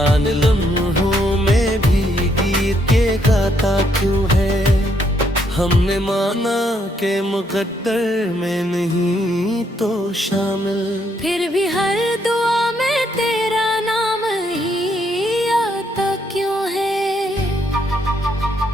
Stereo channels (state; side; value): normal; both; correlation 0.73